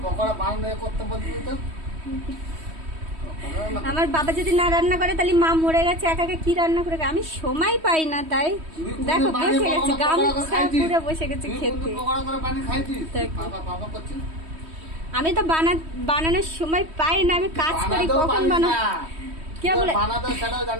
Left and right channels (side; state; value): left; late; 3.1 ms